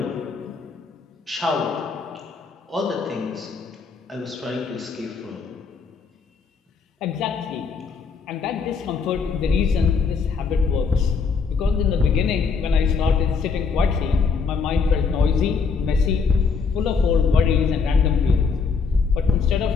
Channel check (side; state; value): right; quieter; 5.2 dB